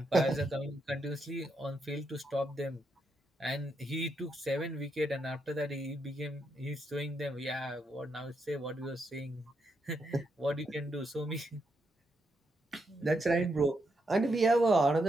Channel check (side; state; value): both; normal; correlation 0.81